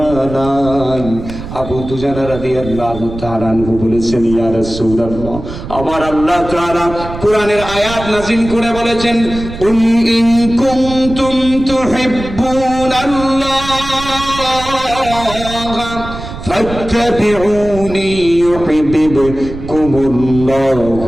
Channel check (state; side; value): noise; right; rumble, 11 dB below the sound